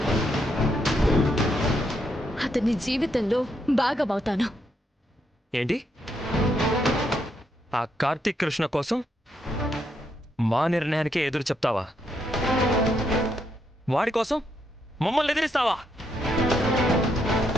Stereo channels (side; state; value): both; normal; correlation 0.78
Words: అతని జీవితంలో భాగమవుతాను. ఏంటి? ఆ కార్తీక్ కృష్ణ కోసం మా నిర్ణయానికే ఎదురు చెప్తావా? వాడి కోసం మమ్మల్ని ఎదిరిస్తావా?